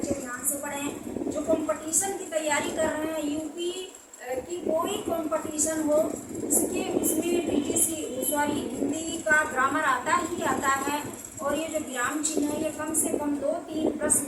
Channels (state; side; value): identical; both; correlation 1.00